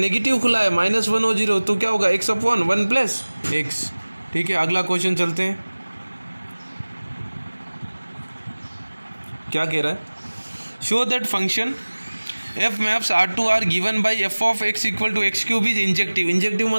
खुला है -1 और 0, तो क्या होगा, x/1 + x। ठीक है, अगला क्वेश्चन चलते हैं। क्या कह रहा है, show that function f maps R to R given by f of x = x³ is injective. Injective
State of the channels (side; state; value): both; inverted; correlation -1.00